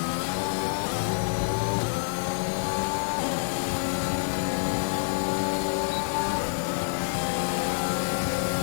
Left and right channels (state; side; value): silent; right; 60 dB below the other